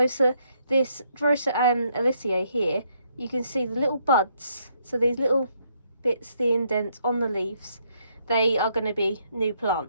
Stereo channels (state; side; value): inverted; both; correlation -0.73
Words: this Drosera here, you can see the little buds. So these little bits, the indents on the leaves, they are going to be new